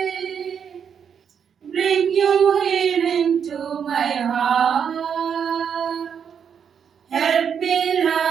bring you healing to my heart, help me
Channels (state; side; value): quieter; left; 7.5 dB